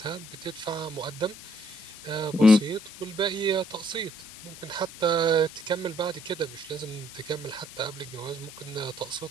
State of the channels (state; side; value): noise; left; hiss, 15 dB below the sound